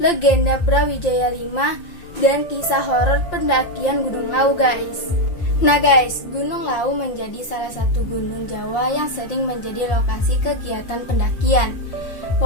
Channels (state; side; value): late; right; 5.7 ms